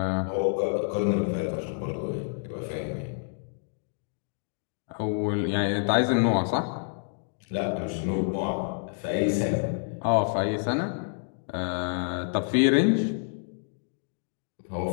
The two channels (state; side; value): silent; right; digital silence